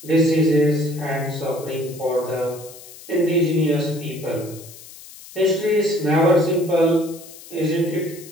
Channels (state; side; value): noise; left; hiss, 18 dB below the sound